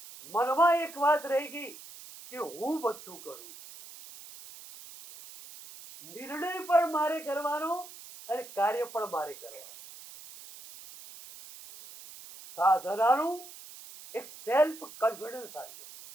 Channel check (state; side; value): noise; right; hiss, 16 dB below the sound